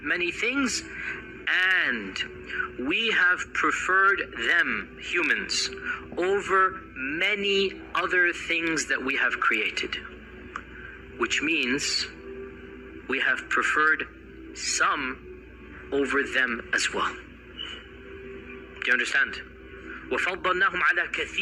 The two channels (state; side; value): identical; both; correlation 1.00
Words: many things, and we have preferred them, humans, over many other things that we have created. Which means we have preferred some over them as well. Do you understand? وَفَضَّلْنَاهُمْ عَلَى